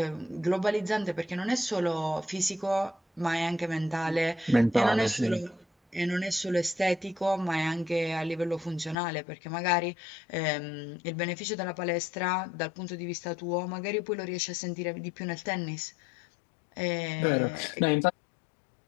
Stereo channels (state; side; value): drops out; right; at 9.0 s